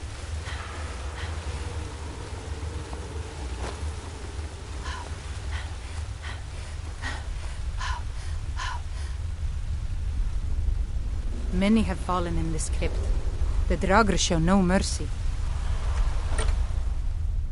Many have fallen in this crypt. The Draugr show no mercy.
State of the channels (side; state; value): both; identical; correlation 1.00